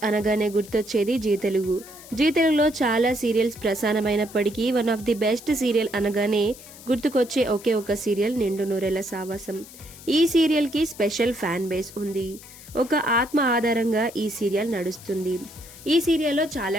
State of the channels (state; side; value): noise; left; hiss, 18 dB below the sound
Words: అనగానే గుర్తొచ్చేది G Telugu. Zee తెలుగులో చాలా సీరియల్స్ ప్రసారమైనప్పటికీ one of the best serial అనగానే గుర్తుకొచ్చే ఒకే ఒక సీరియల్ నిండు నూరేళ్ల సావాసం. ఈ సీరియల్ కి స్పెషల్ ఫ్యాన్ బేస్ ఉంది. ఒక ఆత్మ ఆధారంగా ఈ సీరియల్ నడుస్తుంది. ఈ సీరియల్లో